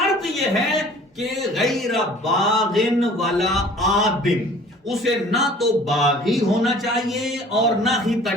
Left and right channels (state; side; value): normal; both; correlation 0.49